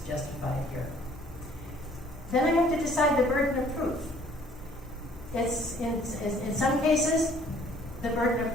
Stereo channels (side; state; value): both; normal; correlation 0.58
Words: justified here. Then I have to decide the burden of proof. It's in some cases, the burden of